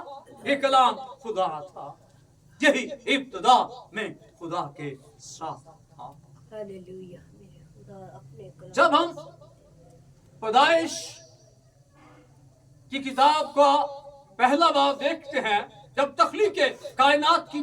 ये कलाम खुदा था। यही इब्तिदा में खुदा के साथ था। हालेलुया। मेरे खुदा अपने कलाम जब हम पैदाइश की किताब का पहला बाब देखते हैं, जब तख्लीक कायनात की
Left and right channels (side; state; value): both; identical; correlation 1.00